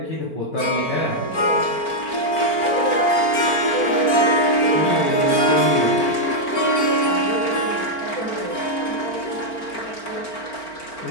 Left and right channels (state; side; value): late; right; 4.4 ms